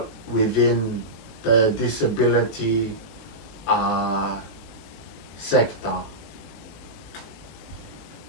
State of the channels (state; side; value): late; right; 19 ms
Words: within the disability uh, sector.